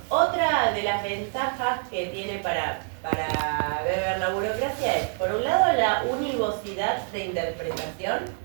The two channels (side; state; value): left; silent; 56 dB below the other